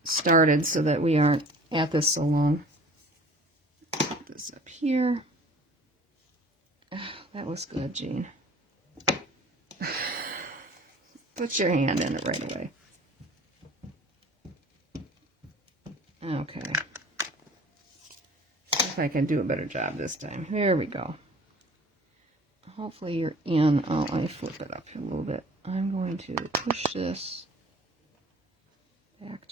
started so that we aren't at this so long. Put this up here. Oh, that was good, Jean. Put your hand in it right away. Okay. See if I can do a better job this time. Here we go. Hopefully you're in. Oh, let me flip it up here a little bit. I'm going to push this back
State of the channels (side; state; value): both; normal; correlation 0.47